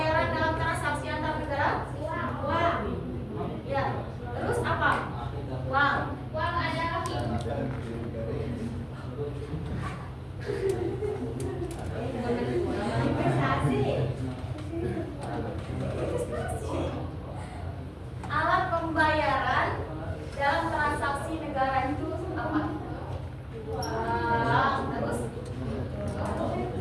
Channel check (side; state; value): both; identical; correlation 1.00